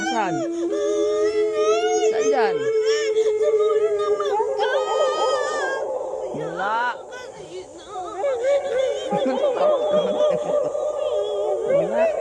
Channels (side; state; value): both; identical; correlation 1.00